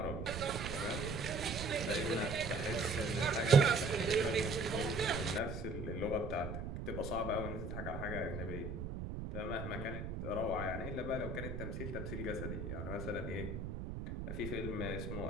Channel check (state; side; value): noise; right; rumble, 5 dB below the sound